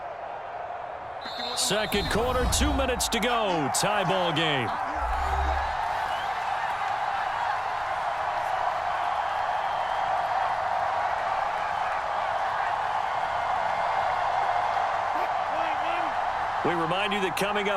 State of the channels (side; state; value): both; identical; correlation 1.00